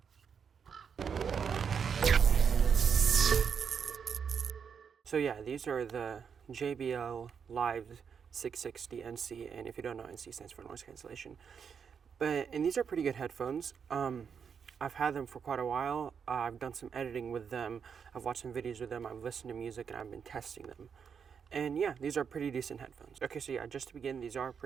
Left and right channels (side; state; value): left; quieter; 6.8 dB